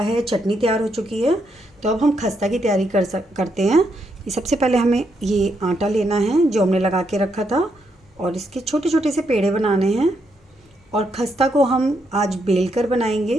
चटनी तैयार हो चुकी है। तो अब हम खस्ता की तैयारी करते हैं। ये सबसे पहले हमें ये आटा लेना है जो हमने लगा के रखा था, और इसके छोटे छोटे से पेड़े बनाने हैं। और खस्ता को हम आज बेल कर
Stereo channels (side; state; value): both; normal; correlation 0.78